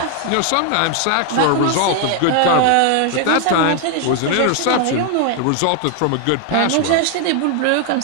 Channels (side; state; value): both; different; correlation 0.00